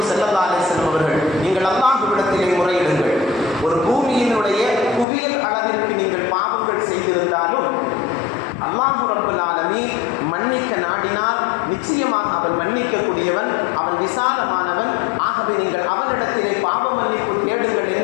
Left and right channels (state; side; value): drops out; right; at 5.1 s